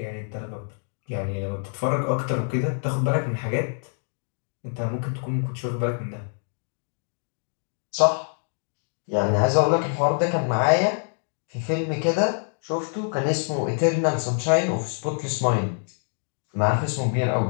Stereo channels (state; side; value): silent; right; 61 dB below the other